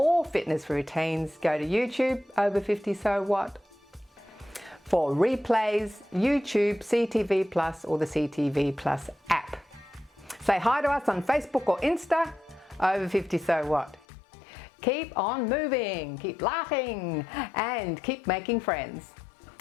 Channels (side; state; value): right; drops out; at 14.1 s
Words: fitness routines, go to YouTube, Over 50 So What. For replays, YouTube, CTV Plus or the CTV Plus app. Say hi to us on Facebook or Insta, Over 50 So What. Keep on moving, keep laughing, and keep making friends.